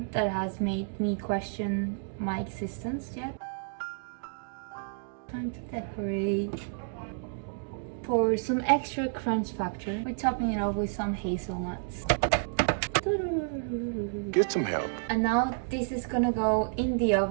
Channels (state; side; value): silent; left; digital silence